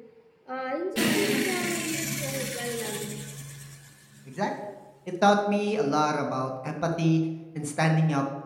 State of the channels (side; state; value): both; identical; correlation 1.00